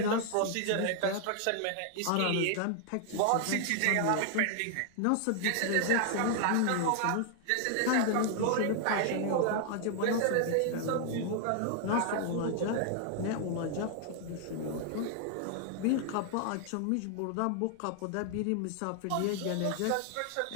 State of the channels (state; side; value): different; both; correlation 0.00